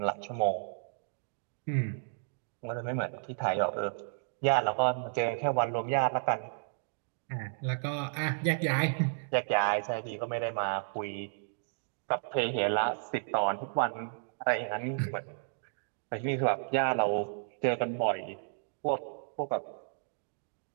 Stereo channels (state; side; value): silent; left; digital silence